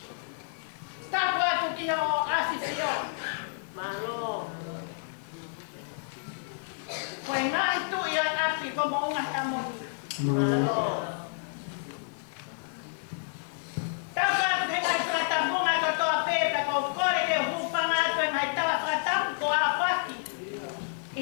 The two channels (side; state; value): right; silent; 58 dB below the other